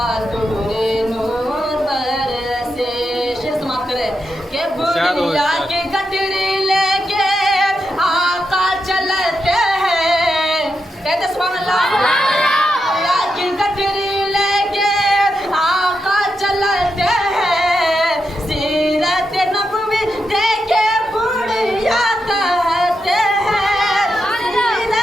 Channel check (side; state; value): both; normal; correlation 0.86